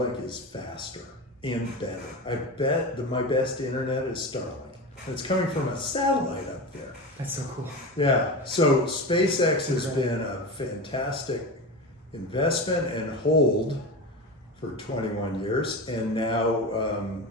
is faster and better. I bet that my best internet is Starlink. And it's coming from a satellite up there. That's so cool. Yeah. So SpaceX has been a fantastic investment and hold for 21 years, and now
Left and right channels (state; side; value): normal; both; correlation 0.25